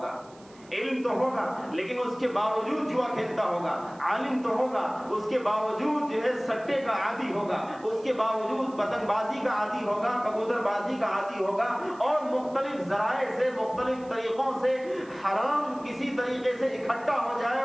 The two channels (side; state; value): right; noise; hiss, 27 dB below the sound